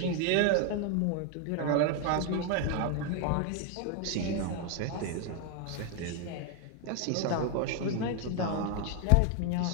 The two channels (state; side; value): different; both; correlation 0.01